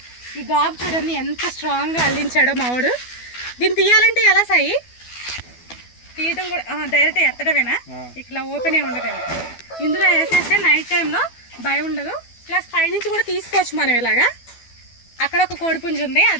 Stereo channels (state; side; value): late; right; 12 ms